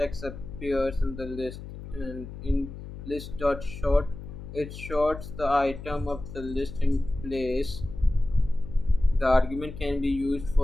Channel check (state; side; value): noise; left; hum, 12 dB below the sound